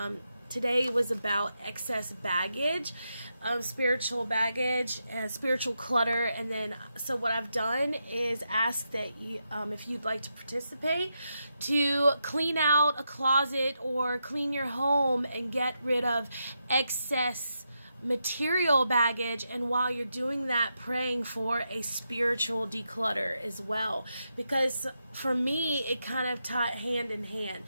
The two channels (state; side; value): inverted; both; correlation -0.85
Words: today was about excess baggage, spiritual baggage and spiritual clutter. And then, so what I've done is ask that you, if you'd like to participate, to clean out a closet or clean your home and get rid of excess material baggage, and while you're doing that, praying for a spiritual declutter as well, because for me it kind of tied hand in hand.